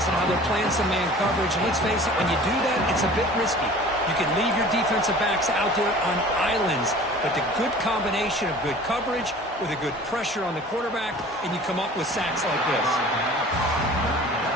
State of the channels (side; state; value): both; normal; correlation 0.45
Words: and how they're playing some man coverage. And let's face it, when you do that, it's a bit risky. You can leave your defensive backs out there on islands, but the good combination of good coverage with a good pressure on the quarterback, and you come up with sacks like this.